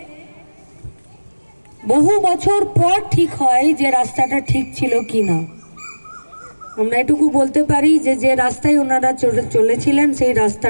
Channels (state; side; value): inverted; both; correlation -1.00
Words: বহু বছর পর ঠিক হয় যে রাস্তাটা ঠিক ছিল কি না। আমরা এটুকু বলতে পারি যে যে রাস্তায় ওনারা চলেছিলেন সেই